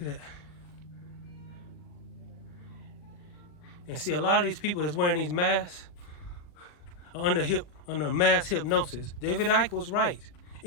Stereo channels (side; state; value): right; late; 40 ms